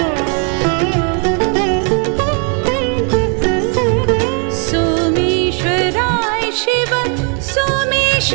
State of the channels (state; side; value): quieter; left; 39.5 dB